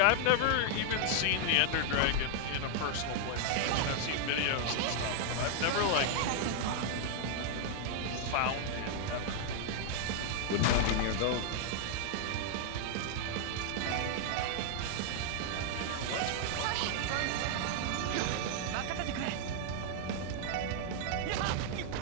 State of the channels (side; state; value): both; different; correlation 0.00